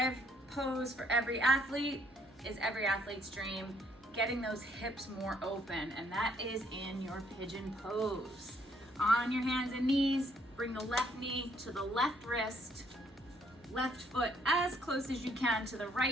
pose for every athlete is every athlete's dream. getting those hips more open, and that is in your pigeon pose. On your hands and knees, bring the left knee to the left wrist, left foot as close as you can to the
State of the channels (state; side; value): normal; both; correlation 0.67